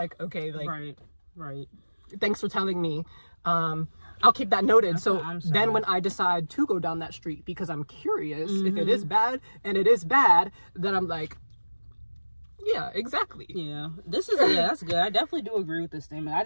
okay, like, right. thanks for telling me. I'll keep that noted. That's So what I'm saying. then when I decide to go down that street because I'm curious if it is bad, and it is bad, then I'm like, yeah, exactly. Yeah, that's good. I definitely do agree with this statement. I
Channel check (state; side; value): inverted; both; correlation -1.00